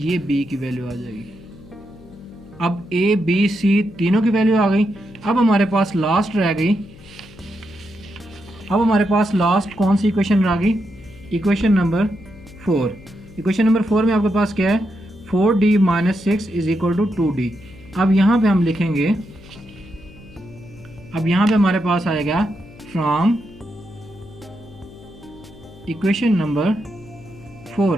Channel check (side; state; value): left; noise; hum, 21 dB below the sound